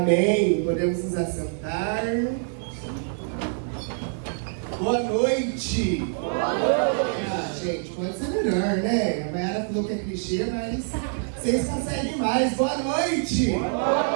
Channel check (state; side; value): silent; left; 61 dB below the other